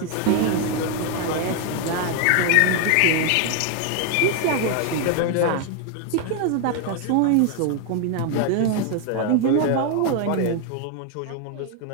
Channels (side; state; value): both; different; correlation 0.01